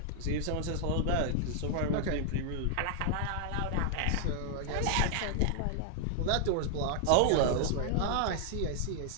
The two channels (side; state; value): both; different; correlation 0.00